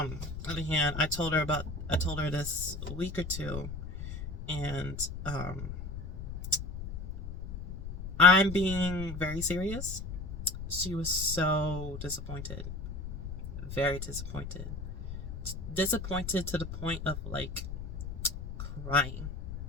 on the other hand, I told her this a week or two, and I'm being very serious. She was so disappointed, very disappointed, disappointed to the point of like crying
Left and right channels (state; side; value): noise; left; rumble, 7 dB below the sound